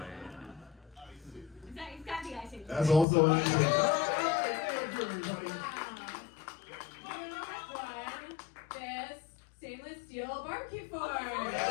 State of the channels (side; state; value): right; drops out; at 3.1 s